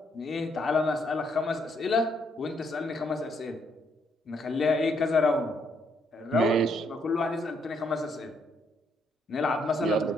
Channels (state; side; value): normal; both; correlation 0.73